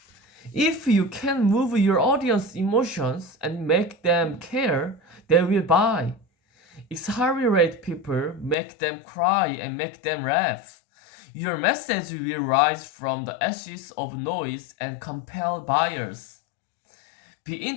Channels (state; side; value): drops out; right; at 8.6 s